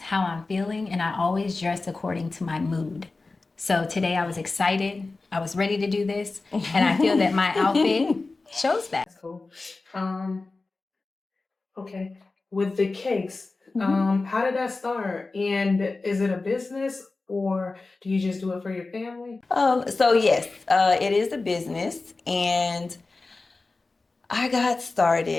I'm feeling, and I always dress according to my mood. So today I was excited. I was ready to do this, and I feel that my outfit shows that. That's cool. Okay. With the cakes, how did that start? And is it a business or do you just do it for your family? So yes, it is a business, and I got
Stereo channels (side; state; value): right; quieter; 3.6 dB